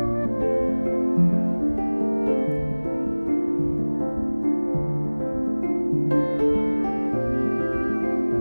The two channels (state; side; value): inverted; both; correlation -1.00